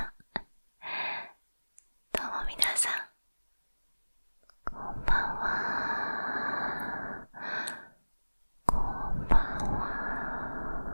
どうも皆さん、こんばんは。こんばんは。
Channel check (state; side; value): inverted; both; correlation -1.00